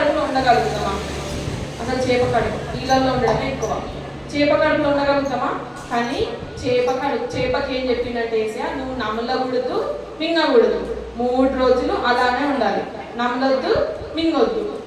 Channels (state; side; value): identical; both; correlation 1.00